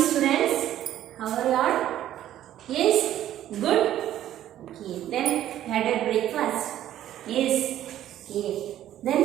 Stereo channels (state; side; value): quieter; left; 12.2 dB